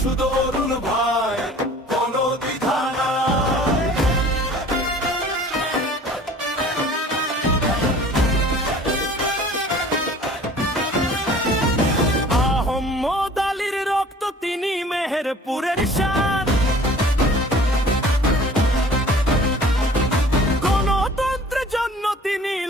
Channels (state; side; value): normal; both; correlation 0.48